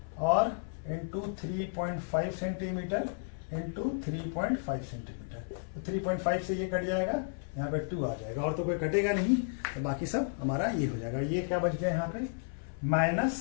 और इंटू 3.5 सेंटीमीटर इंटू 3.5 सेंटीमीटर, तो 3.5 से ये कट जाएगा, यहाँ पे 2 आ जाएगा, और तो कोई कटेगा नहीं, तो बाकी सब हमारा ये हो जाएगा। ये क्या बच गया यहाँ पे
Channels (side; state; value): right; silent; 56 dB below the other